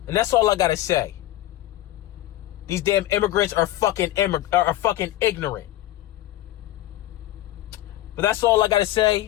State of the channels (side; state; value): right; quieter; 15.1 dB